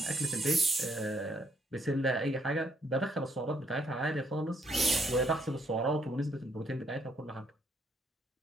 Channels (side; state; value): both; normal; correlation 0.71